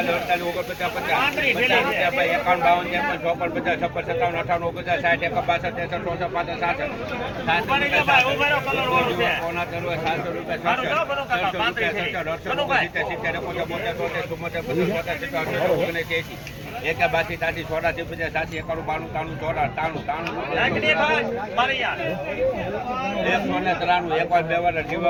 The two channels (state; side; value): identical; both; correlation 1.00